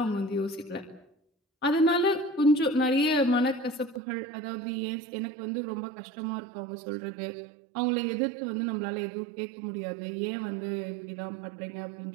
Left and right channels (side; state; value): left; drops out; at 4.0 s